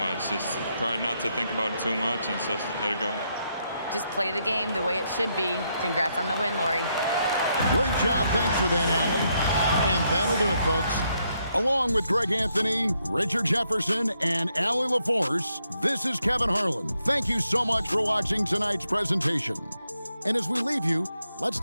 Just try not to think about it too much and just let it go. Just play the game the way it should be. Congrats on the win, Lori. Great job. Thanks for that, Allie. And that'll do it, folks. Along with Greg Anthony, Richard Jefferson, and Allie LaForce, this is Kevin Harlan. Thank you so much for watching tonight's presentation. And as we leave you, let's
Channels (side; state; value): both; inverted; correlation -0.78